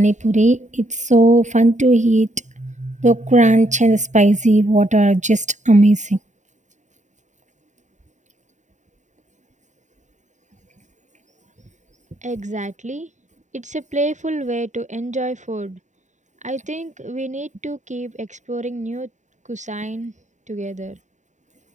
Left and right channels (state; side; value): late; left; 0.35 ms